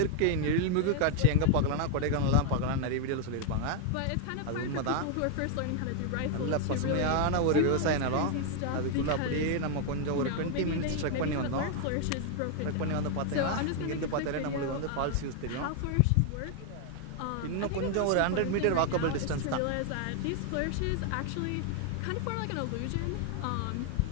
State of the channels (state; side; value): different; both; correlation 0.00